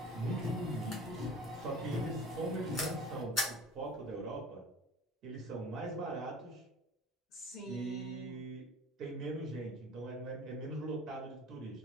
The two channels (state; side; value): normal; both; correlation 0.42